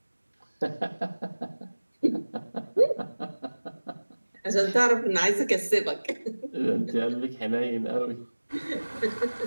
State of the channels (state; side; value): inverted; both; correlation -1.00